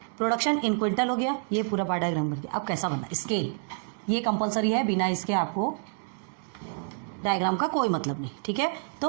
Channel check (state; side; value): silent; left; 59 dB below the other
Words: प्रोडक्शन इन क्विंटल हो गया, ये पूरा बार डायग्राम बन गया। अब कैसा बनना, स्केल ये कंपलसरी है, बिना इसके आपको डायग्राम का कोई मतलब नहीं, ठीक है। तो